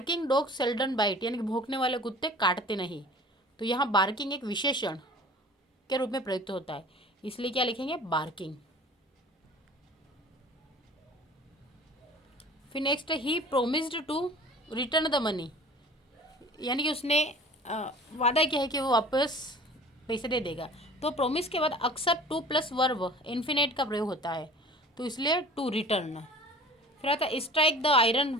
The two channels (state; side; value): normal; both; correlation 0.44